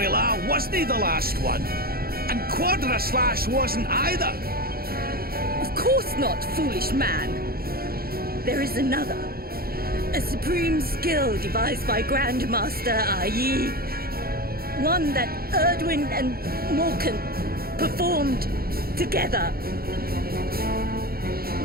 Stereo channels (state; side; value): late; left; 0.44 ms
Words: wasn't the last one? And Quadra Slash wasn't either? Of course not, foolish man. There is another. A supreme skill devised by Grandmaster i.e. one that Erdwin and Morkan performed together.